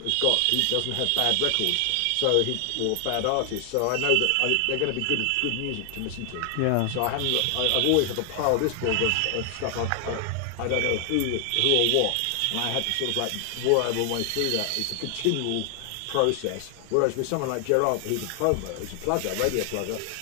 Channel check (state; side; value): different; both; correlation 0.00